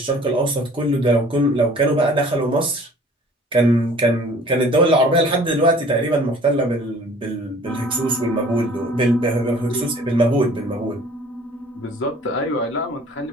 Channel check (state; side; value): normal; both; correlation 0.50